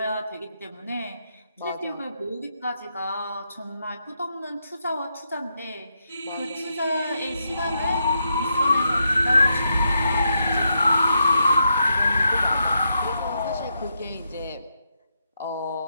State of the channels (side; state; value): both; inverted; correlation -0.82